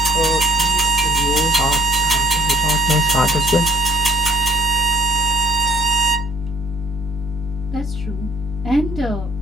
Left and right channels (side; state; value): both; normal; correlation 0.61